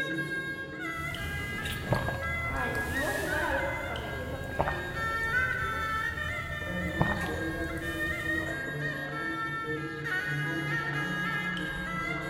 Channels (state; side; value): identical; both; correlation 1.00